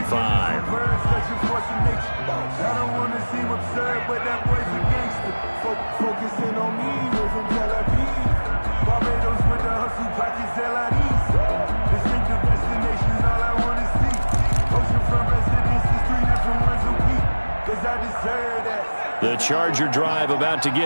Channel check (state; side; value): inverted; both; correlation -1.00